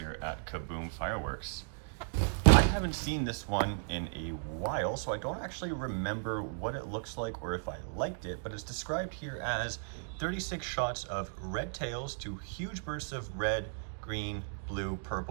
at Kaboom Fireworks. I haven't seen this one in a while, so I don't actually remember what it looks like or if I liked it, but it's described here as 36 shots of red tails to huge bursts of red, green, blue,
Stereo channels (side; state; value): left; silent; digital silence